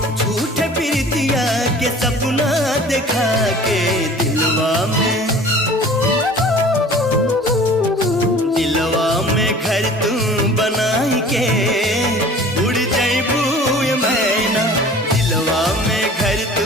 झूठे प्रीतिया के सपना दिखा के, दिलवा में घर तू बनाई के उड़ जैबू मैना, दिलवा में घर तू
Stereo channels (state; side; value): normal; both; correlation 0.45